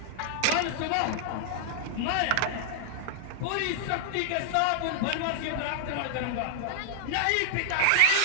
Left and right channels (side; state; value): both; different; correlation -0.01